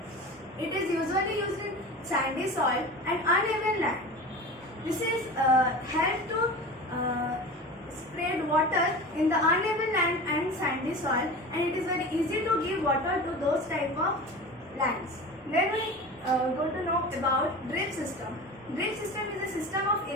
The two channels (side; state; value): both; normal; correlation 0.33